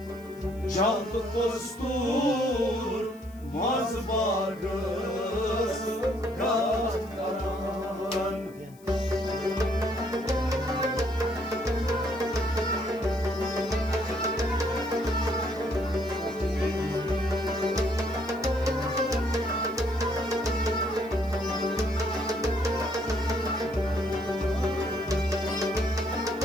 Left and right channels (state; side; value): noise; left; hiss, 27 dB below the sound